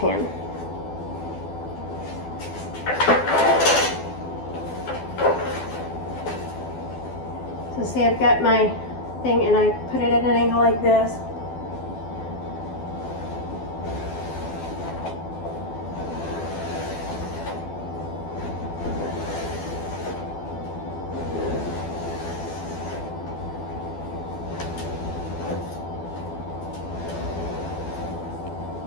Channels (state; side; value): late; right; 12 ms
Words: So see, I've got my thing and I put it at an angle like this.